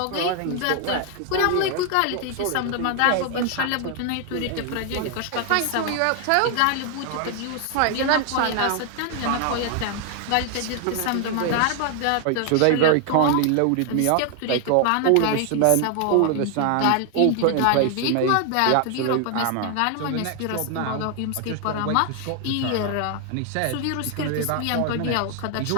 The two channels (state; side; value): different; both; correlation 0.00